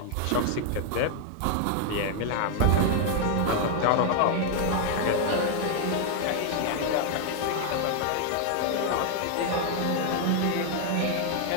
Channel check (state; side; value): different; both; correlation 0.00